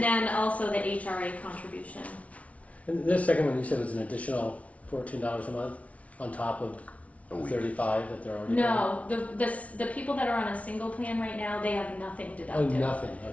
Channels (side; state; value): right; late; 0.066 ms